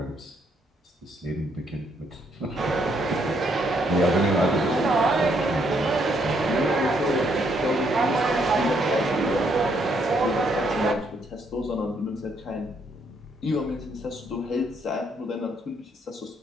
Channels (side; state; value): both; normal; correlation 0.72